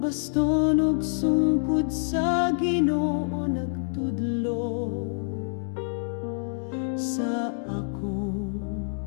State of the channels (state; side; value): silent; right; digital silence